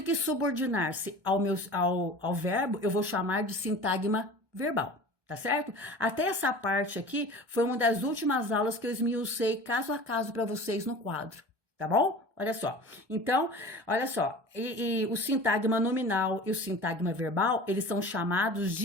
que subordinar-se ao verbo, eu vou chamar de sintagma verbal. Tá certo? Até essa parte aqui foi uma das últimas aulas que eu esmiucei caso a caso para vocês no quadro, tá bom? Olha só. Então, olha só, e o sintagma nominal e o sintagma verbal, eles são chamados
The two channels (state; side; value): late; left; 1.2 ms